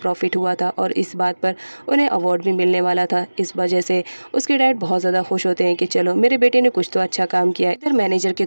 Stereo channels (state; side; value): inverted; both; correlation -1.00